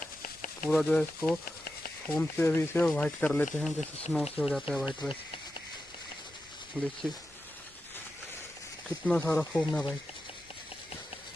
जो है इसको फोम से अभी इसे वाइट कर लेते हैं, जैसे स्नो से हो जाता है वाइट। वैसे देखिए कितना सारा फोम है भाई।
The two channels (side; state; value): both; normal; correlation 0.90